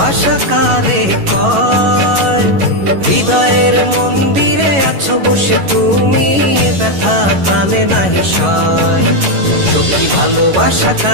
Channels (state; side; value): late; left; 11 ms